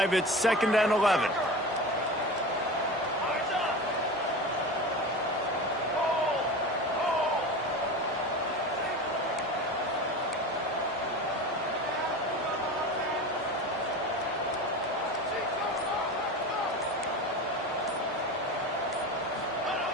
It's 2nd and 11.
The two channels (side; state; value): both; normal; correlation 0.30